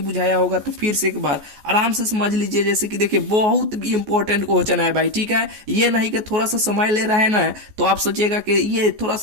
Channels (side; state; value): left; late; 14 ms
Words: बुझाया होगा तो फिर से एक बार आराम से समझ लीजिए। जैसे कि देखिए बहुत इंपॉर्टेंट क्वेश्चन है भाई, ठीक है। ये नहीं कि थोड़ा सा समय ले रहा है ना, तो आप सोचिएगा कि ये थोड़ा